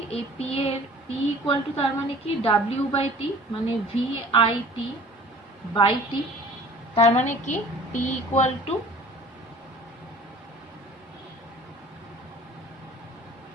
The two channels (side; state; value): both; normal; correlation 0.47